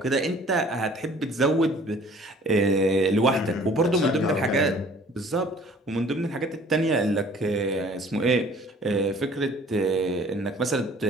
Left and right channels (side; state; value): both; normal; correlation 0.52